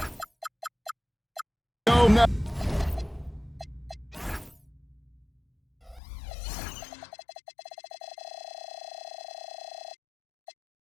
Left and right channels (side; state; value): right; drops out; at 6.0 s